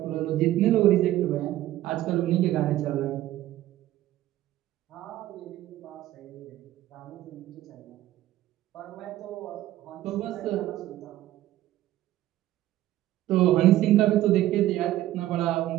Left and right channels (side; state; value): left; quieter; 14.4 dB